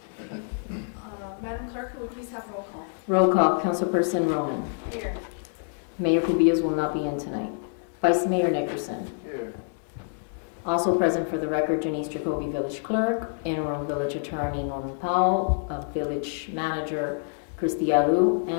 Madam Clerk, could we please have roll call? Roll call. Councilperson Roman. Here. Mayor Cubillos will not be in tonight. Vice Mayor Nickerson. Here. Also present for the record, Janice Jacoby, Village Clerk, Interim Village Attorney Norman Powell, Village Manager Christy Alou,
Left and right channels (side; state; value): right; silent; digital silence